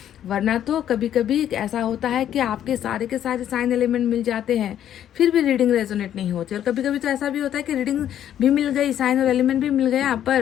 वरना तो कभी कभी ऐसा होता है कि आपके सारे के सारे साइन एलिमेंट मिल जाते हैं फिर भी रीडिंग रेजोनेट नहीं होती, और कभी कभी तो ऐसा भी होता है कि रीडिंग भी मिल गई, साइन और एलिमेंट भी मिल गया,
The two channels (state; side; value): quieter; right; 10.6 dB